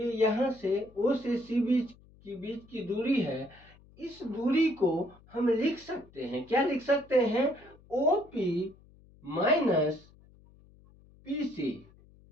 यहां से ओ से सी बीच की दूरी है। इस दूरी को हम लिख सकते हैं, क्या लिख सकते हैं, O P minus P C.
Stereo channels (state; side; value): noise; left; hum, 26 dB below the sound